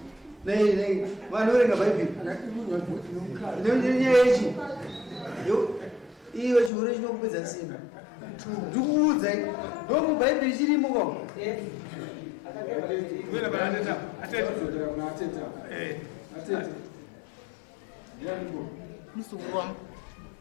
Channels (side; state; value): right; drops out; at 6.7 s